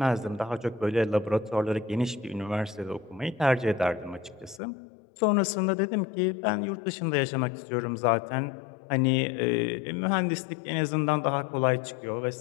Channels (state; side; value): drops out; right; at 4.6 s